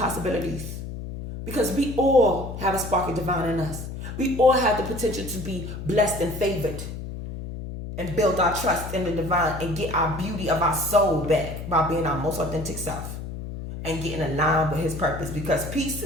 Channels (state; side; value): noise; left; hum, 8 dB below the sound